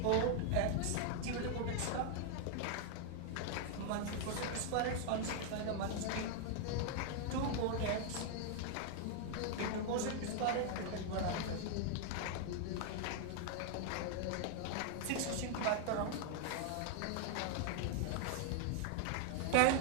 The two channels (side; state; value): both; different; correlation 0.00